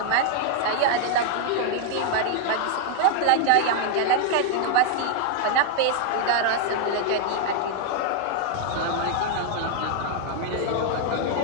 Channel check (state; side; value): different; both; correlation 0.00